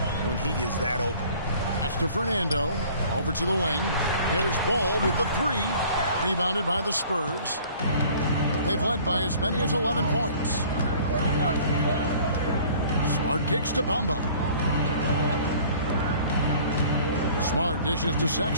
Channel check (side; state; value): both; inverted; correlation -0.51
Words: when he is that open. That's to Fernando. Over to the wing. Here's Ball with the 3. Rebounded by the Spurs. They've led by as many as 11 points. Smart kicks to Bamba. Smart dishes to